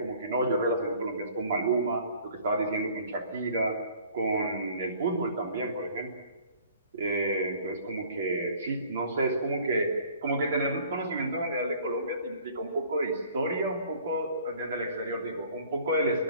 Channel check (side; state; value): both; inverted; correlation -0.53